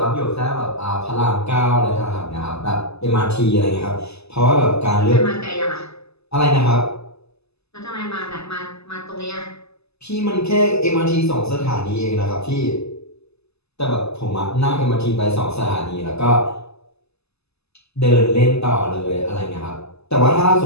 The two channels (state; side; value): late; right; 0.79 ms